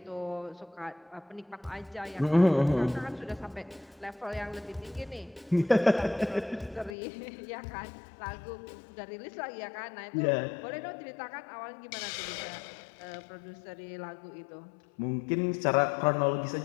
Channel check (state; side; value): drops out; right; at 7.0 s